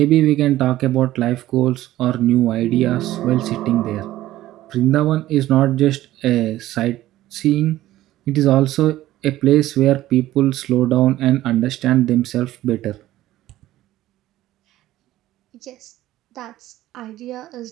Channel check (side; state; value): left; quieter; 15.0 dB